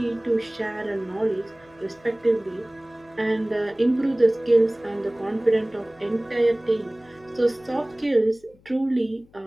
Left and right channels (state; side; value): noise; left; hum, 29 dB below the sound